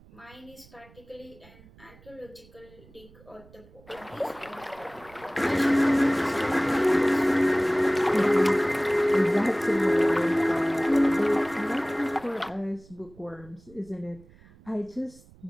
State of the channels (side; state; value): right; noise; rumble, 25 dB below the sound